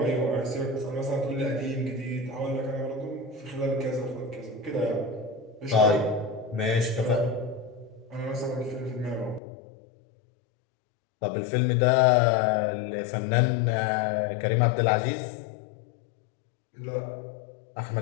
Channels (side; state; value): right; drops out; at 9.4 s